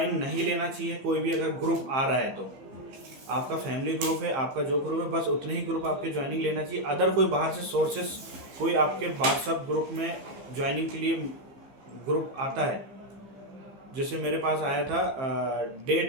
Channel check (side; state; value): left; late; 15 ms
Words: नहीं लेना चाहिए कोई भी, अगर ग्रुप आ रहा है तो आपका फैमिली ग्रुप है, आपका जो ग्रुप है, बस उतने ही ग्रुप आपके ज्वाइनिंग लेना चाहिए। अदर कोई बाहर से सोर्सेस कोई आपके व्हाट्सएप ग्रुप में ज्वाइनिंग के लिए ग्रुप आता है, जैसे मेरे पास आया था डे